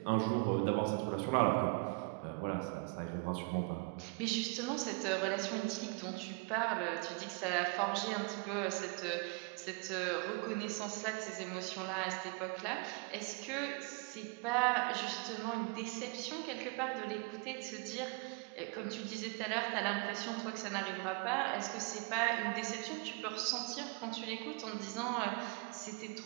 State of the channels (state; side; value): quieter; left; 30.7 dB